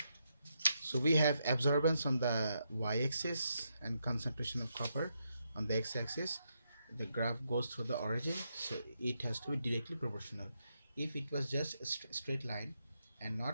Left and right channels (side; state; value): both; inverted; correlation -0.81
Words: so we have absorbance on the y-axis and concentration of copper on the x-axis. The graph goes through the origin, so it has to be directly proportional. If it was just a straight line and